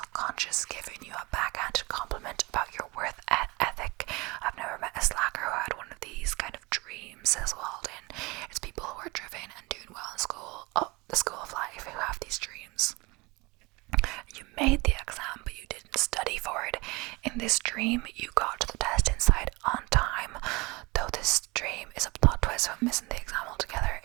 giving you a backhanded compliment about your worth ethic. I've never met a slacker who had one of these kind of dreams, says Walden. It's people who are driven and doing well in school, the school of life, who have these dreams. You made the exam, but you didn't study for it. In this dream, you got to the test inside on time. Though this dream is a plot twist of missing the exam altogether,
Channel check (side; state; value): left; quieter; 24.6 dB